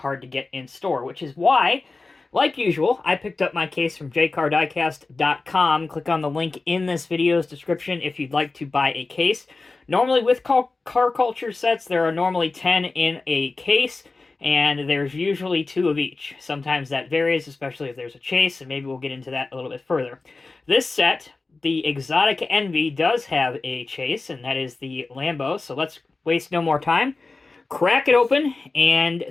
to get in store, which is why, like usual, I picked up my case from jcardiecast.com. Click on the link in this video's description if you'd like to buy a case. Normally with car culture sets, there are normally 10 in a case, and there's usually 2 of each. Sometimes that varies, especially if there's a chase, and maybe we'll get into that a little bit further. This set, the Exotic Envy, does have a chase, and that is the Lambo, so let's waste no more time. Crack it open and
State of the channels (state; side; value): quieter; right; 3.7 dB